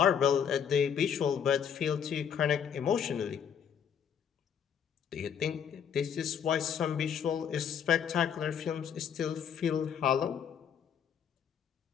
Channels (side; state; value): right; quieter; 8.0 dB